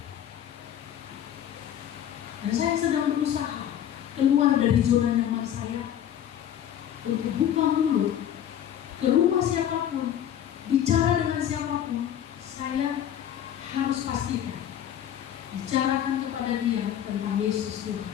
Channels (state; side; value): quieter; right; 10.3 dB